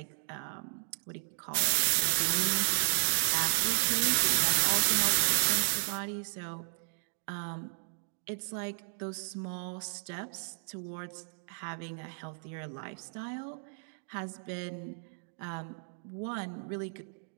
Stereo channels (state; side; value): silent; left; digital silence